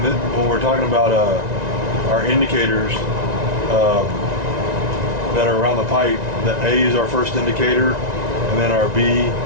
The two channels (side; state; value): left; late; 1.9 ms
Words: when we're talking about our indicators that are around the pipe, the A is our first indicator, and then our B,